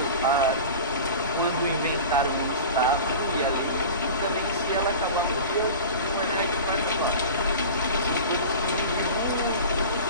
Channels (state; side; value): inverted; both; correlation -0.34